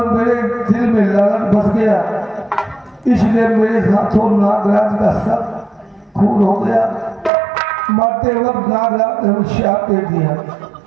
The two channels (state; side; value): drops out; left; at 7.3 s